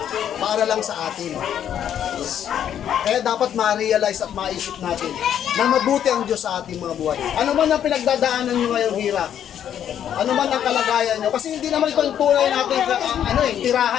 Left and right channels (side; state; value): right; quieter; 9.7 dB